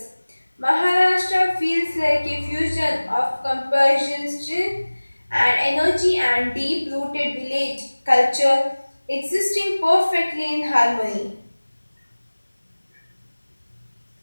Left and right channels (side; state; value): both; inverted; correlation -1.00